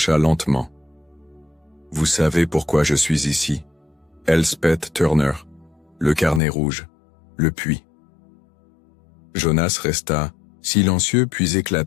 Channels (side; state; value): right; drops out; at 6.4 s